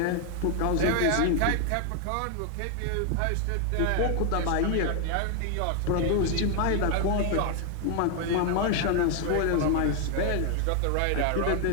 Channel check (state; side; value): different; both; correlation 0.00